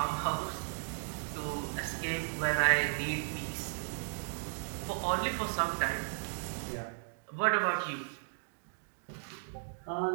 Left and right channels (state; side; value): silent; left; digital silence